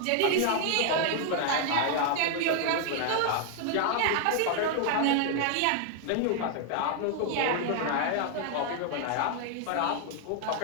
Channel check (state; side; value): different; both; correlation 0.00